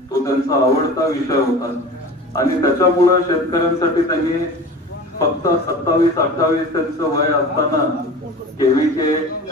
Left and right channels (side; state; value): both; normal; correlation 0.36